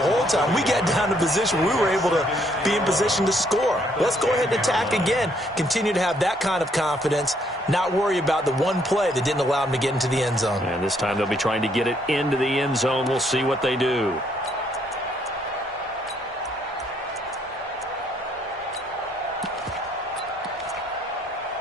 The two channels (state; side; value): normal; both; correlation 0.69